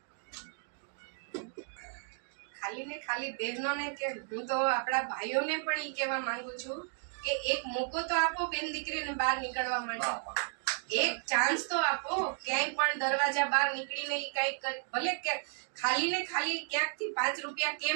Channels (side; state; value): left; silent; 55 dB below the other